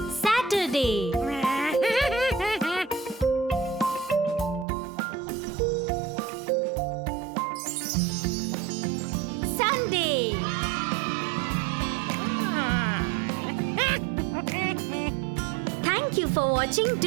Saturday, Sunday. Thank you for watching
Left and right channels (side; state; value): left; drops out; at 4.7 s